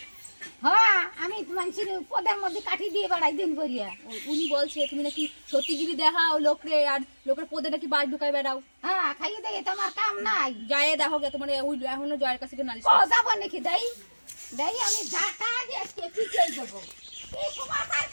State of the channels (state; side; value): inverted; both; correlation -1.00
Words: হ্যাঁ আমি মানুষের পদের মধ্যে কাঠি দিয়ে বেড়াই দিন করিয়া। উনি বলছে তুমি নাকি সত্যিগিরি দেখাও লোকরে, আর লোকের পদে নাকি বাস ঢুকাই বেড়াও। হ্যাঁ খাইয়ে দেয় তোমার কাম নাই। যায় দেখো গে তোমার ওই এখনো জয়ের কাছে নালিশ ও যাবো নাকি দেই দেই আমি ঝাঁটা দিয়ে পিছিয়ে দেবো। এই সমাচার